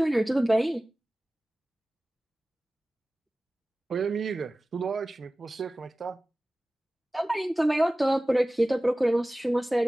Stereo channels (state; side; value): normal; both; correlation 0.97